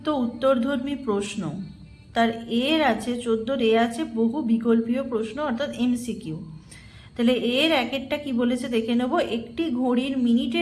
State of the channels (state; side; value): identical; both; correlation 1.00